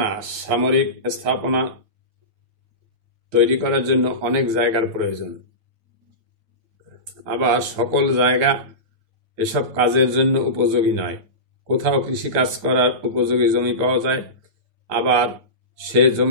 সামরিক স্থাপনা তৈরি করার জন্য অনেক জায়গার প্রয়োজন। আবার সকল জায়গা এসব কাজের জন্য উপযোগী নয়। কোথাও কৃষিকাজ করার উপযোগী জমি পাওয়া যায়, আবার সে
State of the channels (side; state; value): left; late; 9.0 ms